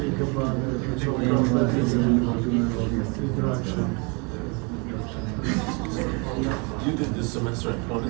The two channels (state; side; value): quieter; left; 31.9 dB